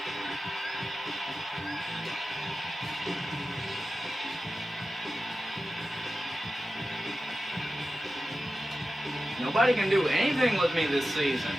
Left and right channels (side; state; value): both; normal; correlation 0.93